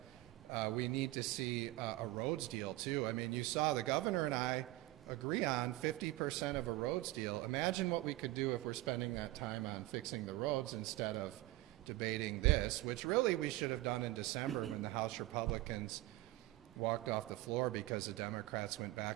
we need to see a roads deal too. I mean, you saw the governor and I agree on 50% of a roads deal. Imagine what we could do if we're spending that time on fixing the roads instead of debating this, which really we should have done in December when the House Republicans walked off the floor because the Democrats went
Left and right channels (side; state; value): left; quieter; 18.1 dB